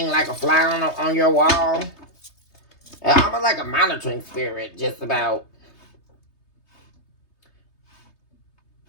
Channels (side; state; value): right; late; 3.3 ms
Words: like a fly on your wall. Almost like a monitoring spirit, just about.